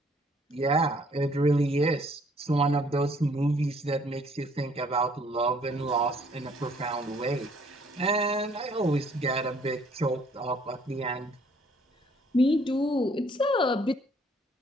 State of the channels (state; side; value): normal; both; correlation 0.62